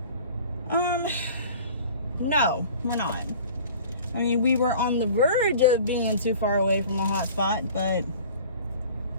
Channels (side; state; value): both; inverted; correlation -0.44